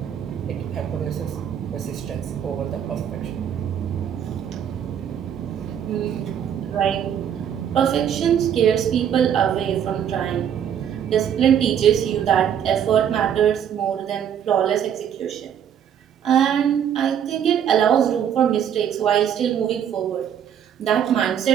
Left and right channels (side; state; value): left; quieter; 9.0 dB